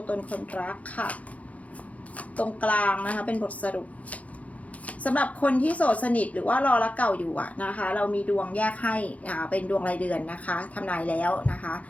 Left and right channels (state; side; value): late; right; 0.067 ms